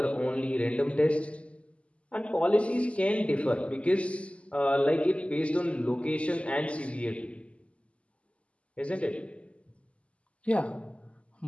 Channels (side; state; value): right; late; 0.060 ms